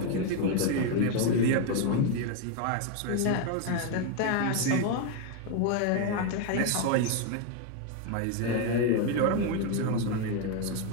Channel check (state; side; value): different; both; correlation 0.01